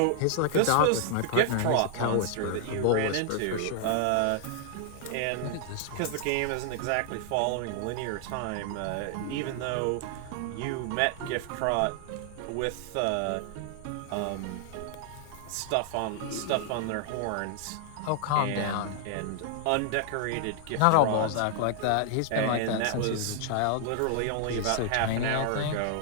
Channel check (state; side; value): different; both; correlation 0.00